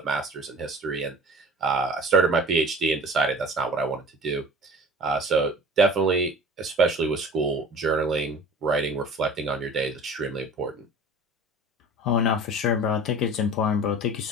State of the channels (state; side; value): normal; both; correlation 0.41